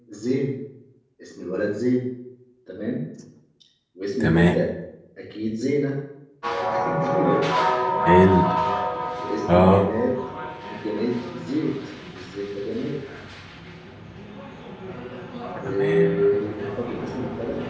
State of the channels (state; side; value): identical; both; correlation 1.00